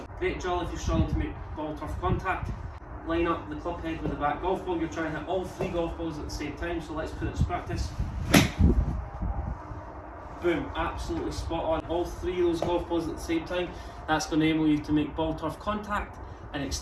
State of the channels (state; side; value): identical; both; correlation 1.00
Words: Great drill if you're struggling to make ball turf contact. Line up the club head with the back golf ball. You're trying to hit all three golf balls at the same time, so let's put it to practice. Boom, absolutely spot on. All three of those golf balls at the same time. That's going to enable you to make ball turf contact and